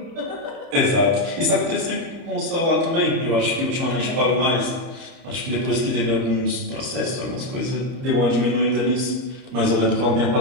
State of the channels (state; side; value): late; left; 30 ms